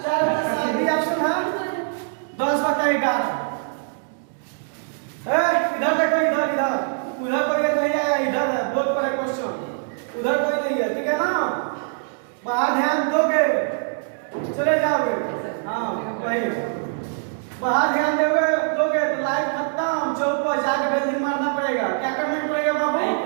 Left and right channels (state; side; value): silent; left; digital silence